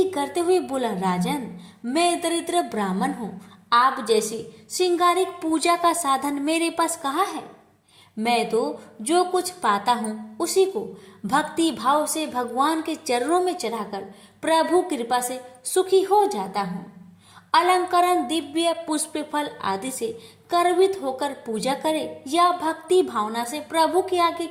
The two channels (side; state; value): both; identical; correlation 1.00